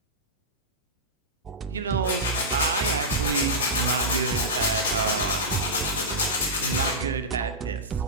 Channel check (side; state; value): both; normal; correlation -0.12